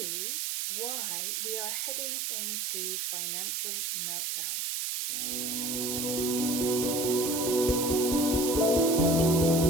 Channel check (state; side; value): noise; right; hiss, 1 dB below the sound